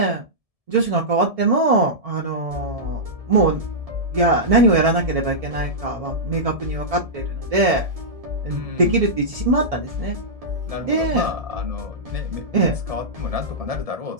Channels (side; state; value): left; late; 1.7 ms